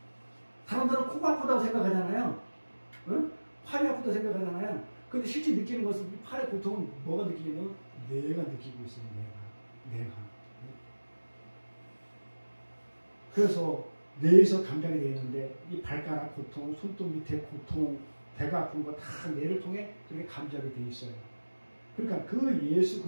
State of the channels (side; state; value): both; inverted; correlation -1.00